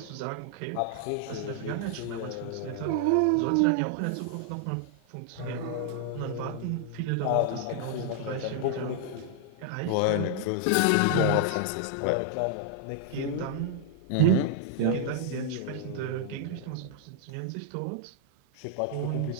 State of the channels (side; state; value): both; different; correlation -0.01